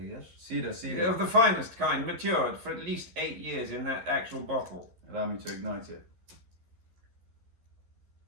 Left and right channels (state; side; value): late; left; 11 ms